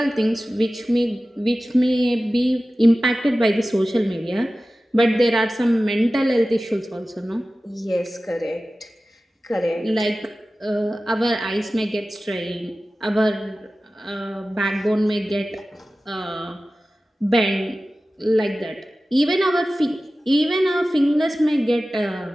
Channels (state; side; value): normal; both; correlation 0.96